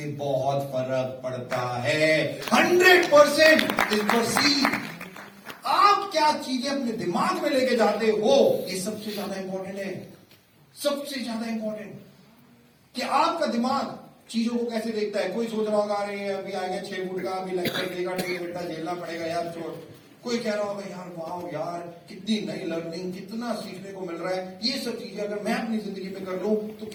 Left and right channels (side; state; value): both; identical; correlation 1.00